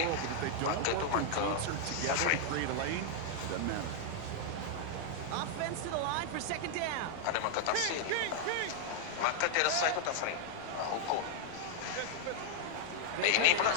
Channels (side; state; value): both; different; correlation 0.00